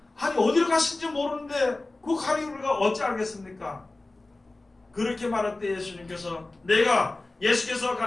아니 어디로 가신지 모르는데 그 가니 우리가 어찌 알겠습니까? 그렇게 말할 때 예수께서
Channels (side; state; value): right; quieter; 3.0 dB